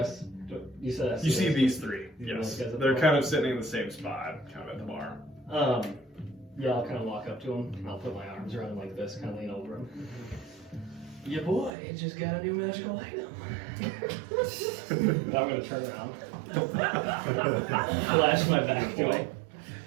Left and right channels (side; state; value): left; drops out; at 11.7 s